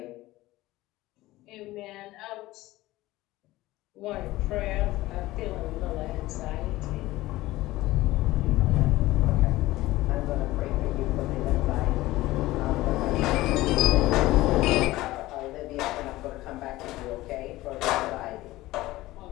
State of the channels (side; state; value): right; quieter; 17.7 dB